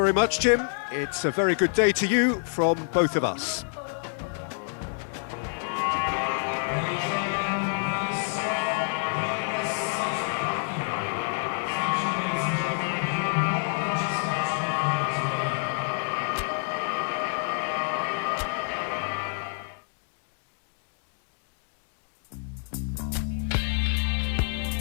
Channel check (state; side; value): silent; right; digital silence